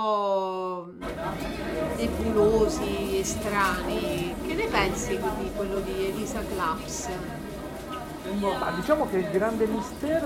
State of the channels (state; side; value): identical; both; correlation 1.00